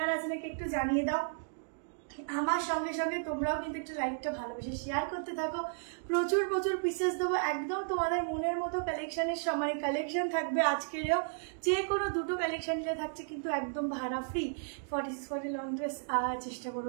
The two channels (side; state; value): left; silent; digital silence